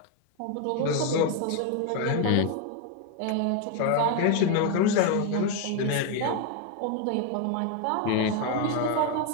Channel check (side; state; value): both; different; correlation 0.01